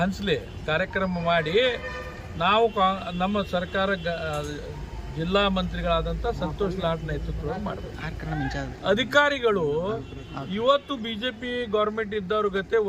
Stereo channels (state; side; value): identical; both; correlation 1.00